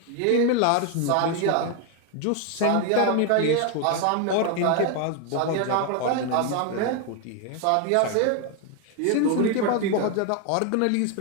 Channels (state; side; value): different; both; correlation 0.01